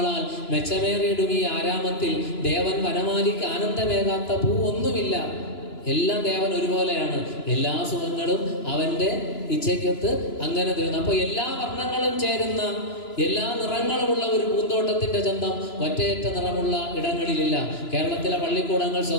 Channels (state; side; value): late; right; 2.9 ms